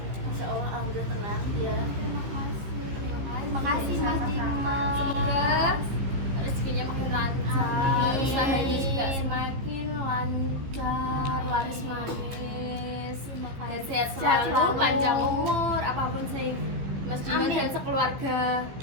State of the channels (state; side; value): late; left; 15 ms